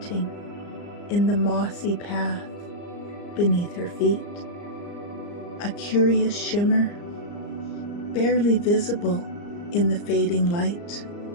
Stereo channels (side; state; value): right; late; 34 ms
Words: in the mossy path beneath her feet. A curious shimmer, barely visible in the fading light.